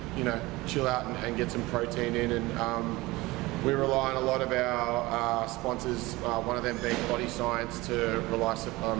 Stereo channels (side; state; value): left; quieter; 20.7 dB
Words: chill out and get some protein in. And we rely on a lot of our sponsors, one of them being Body Science, to rely